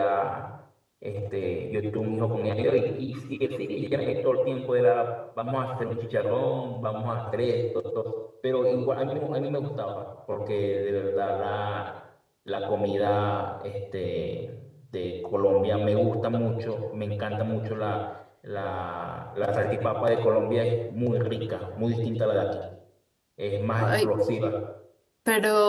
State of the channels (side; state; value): both; identical; correlation 1.00